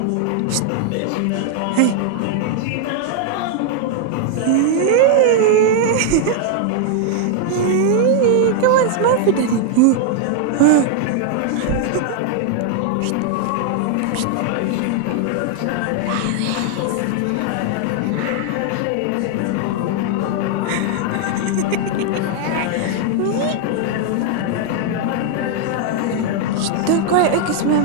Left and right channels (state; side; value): different; both; correlation 0.00